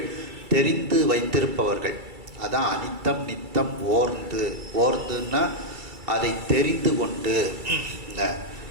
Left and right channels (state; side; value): late; left; 2.3 ms